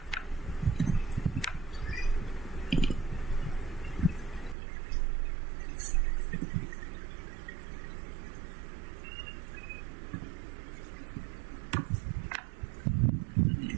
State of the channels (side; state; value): left; drops out; at 4.5 s